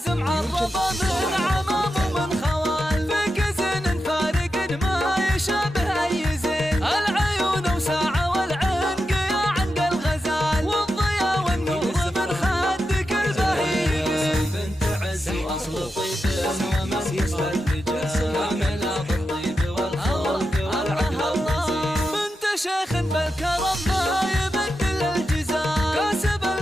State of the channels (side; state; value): both; normal; correlation 0.89